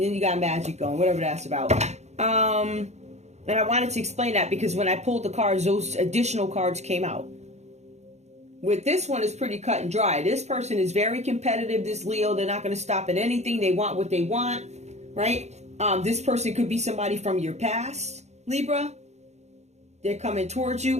you got magic going, whatever that's about. And I wanted to explain that because when I pulled the cards, those additional cards came out. With this one, it's pretty cut and dry. This person is very competitive, this Leo. They're not going to stop at anything. They want what they want, right? This person could be somebody from your past, Libra. They're coming towards you.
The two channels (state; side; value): late; left; 0.32 ms